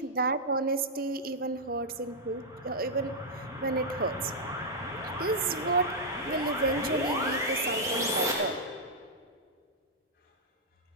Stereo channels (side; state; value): both; normal; correlation -0.06